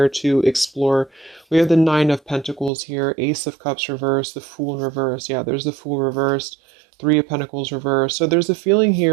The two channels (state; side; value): drops out; left; at 2.7 s